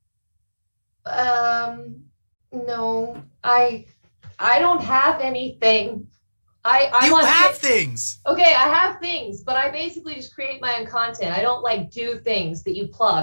No, I don't have anything. You have things. Okay, I have things, but I basically just create my own content. I don't do things that you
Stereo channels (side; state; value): both; inverted; correlation -1.00